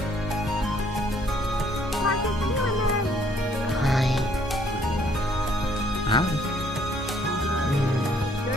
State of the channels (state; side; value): normal; both; correlation 0.64